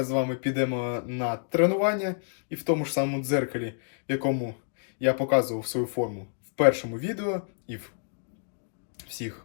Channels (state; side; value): silent; right; digital silence